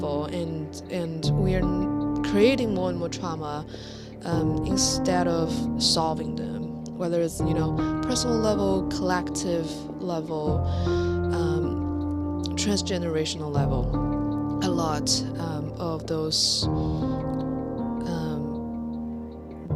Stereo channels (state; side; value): identical; both; correlation 1.00